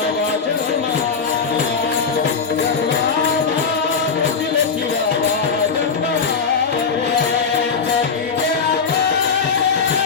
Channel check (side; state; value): right; quieter; 5.4 dB